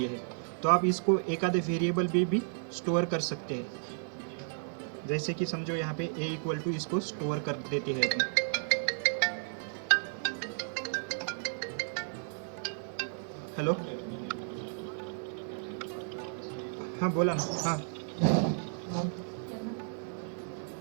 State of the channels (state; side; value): silent; left; digital silence